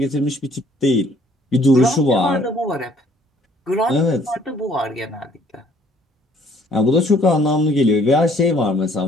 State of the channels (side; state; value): both; normal; correlation 0.60